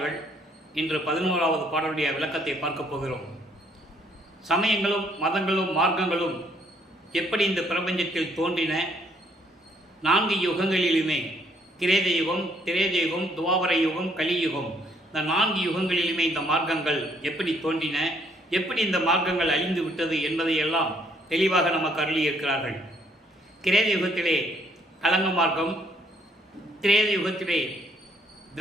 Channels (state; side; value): normal; both; correlation 0.67